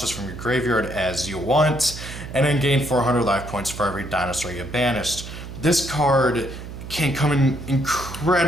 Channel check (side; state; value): right; noise; hum, 11 dB below the sound